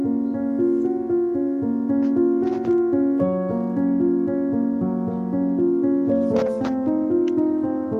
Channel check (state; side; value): identical; both; correlation 1.00